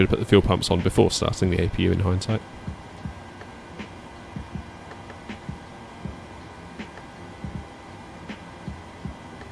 have put the fuel pumps on before starting the APU in hindsight.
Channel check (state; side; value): identical; both; correlation 1.00